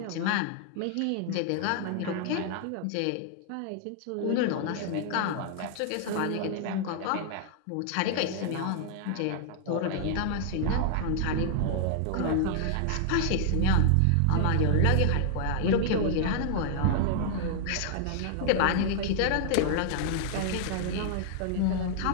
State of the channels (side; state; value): both; different; correlation -0.01